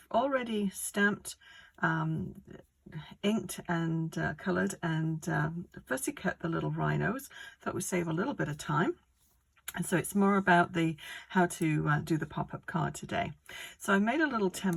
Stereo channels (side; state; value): both; identical; correlation 1.00